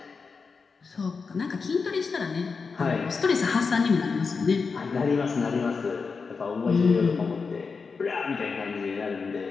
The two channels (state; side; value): quieter; right; 4.9 dB